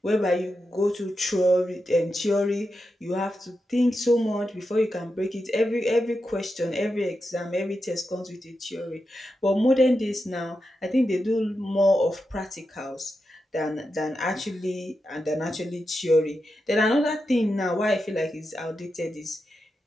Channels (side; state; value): both; normal; correlation 0.88